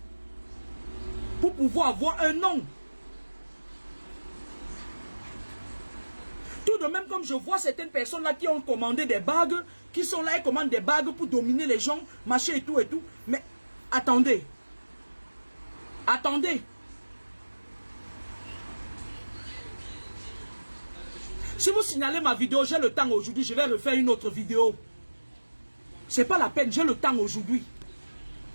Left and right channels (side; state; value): both; inverted; correlation -1.00